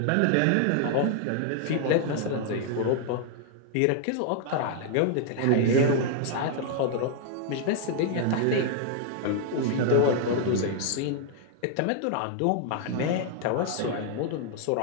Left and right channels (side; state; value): both; different; correlation 0.00